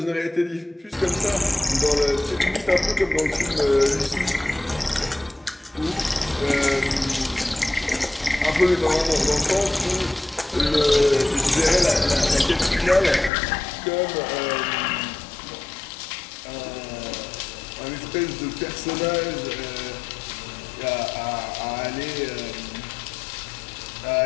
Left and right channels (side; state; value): right; drops out; at 13.3 s